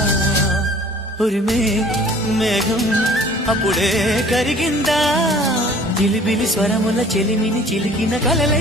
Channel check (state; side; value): normal; both; correlation 0.51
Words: ఉరిమే మేఘం అప్పుడే కరిగిందా జిలిబిలి స్వరముల చెలిమిని చిలికిన